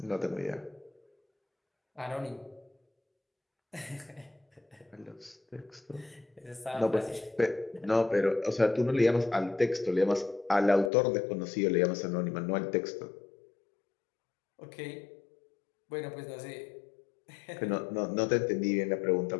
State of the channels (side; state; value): right; drops out; at 10.9 s